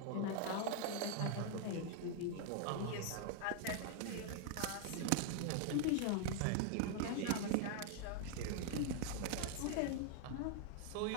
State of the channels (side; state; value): both; different; correlation 0.00